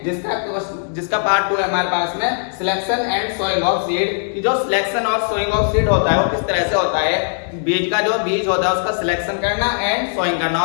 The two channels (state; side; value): silent; right; 67 dB below the other